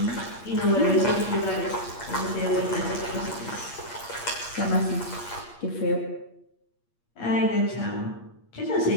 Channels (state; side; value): late; right; 8.5 ms